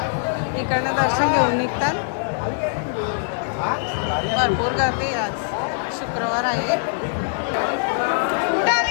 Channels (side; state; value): right; silent; digital silence